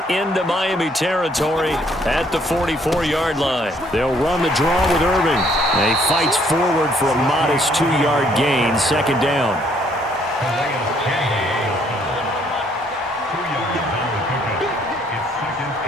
into Miami territory at the 44-yard line. They'll run the draw with Irving. And he fights forward for a modest 2-yard gain, 2nd down.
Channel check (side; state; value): both; normal; correlation 0.66